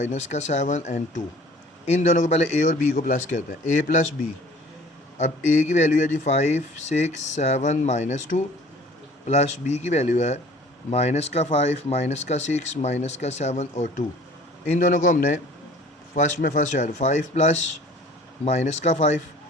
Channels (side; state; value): both; normal; correlation 0.50